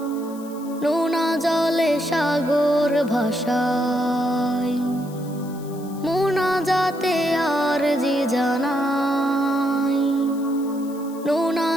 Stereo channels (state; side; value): noise; left; hiss, 22 dB below the sound